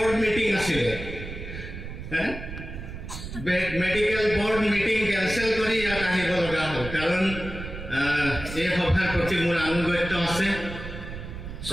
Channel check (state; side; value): noise; right; rumble, 9 dB below the sound